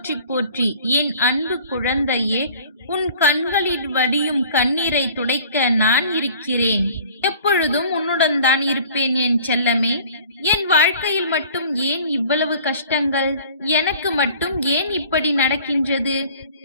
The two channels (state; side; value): inverted; both; correlation -0.48